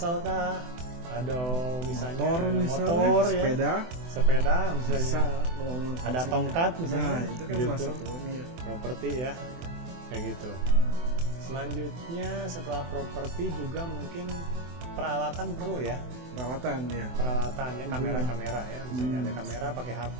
kah? Ada misalnya motor ya. Sepeda misalnya, ada tongkat misalnya, itu kan gitu. Properti ya, kayak gitu. Selanjutnya setelah properti juga mungkin peralatan perlu ya. Peralatan ya, kamera-kamera ya. Misalnya ada kamera pakai HP,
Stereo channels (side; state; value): left; late; 24 ms